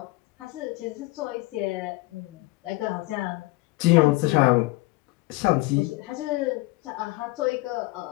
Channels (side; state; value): right; quieter; 21.1 dB